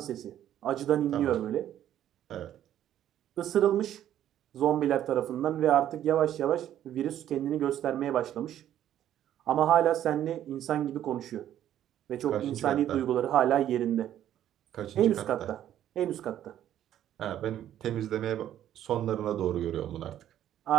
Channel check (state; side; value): quieter; left; 11.4 dB